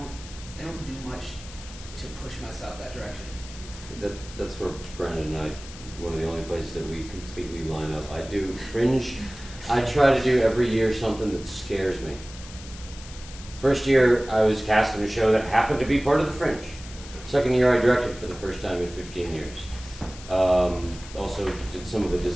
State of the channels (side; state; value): left; noise; hiss, 16 dB below the sound